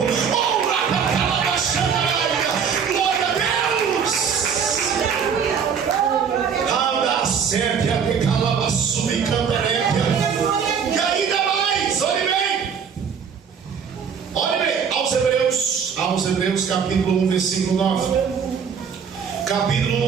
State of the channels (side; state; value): left; quieter; 6.8 dB